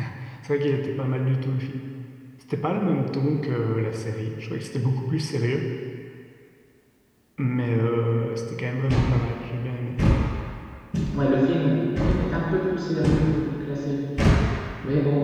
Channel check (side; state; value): both; identical; correlation 1.00